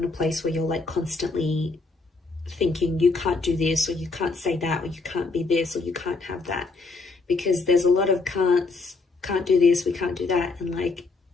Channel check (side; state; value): right; quieter; 3.8 dB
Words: a place where you're like constantly thinking you can't do this, or you can't say that, or you can't be this, or you can't have that, because there's a lot of can't do this, we can't do that, and like